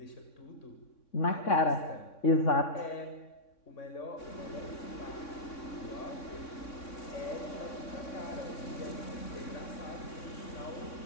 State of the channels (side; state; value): right; late; 3.6 ms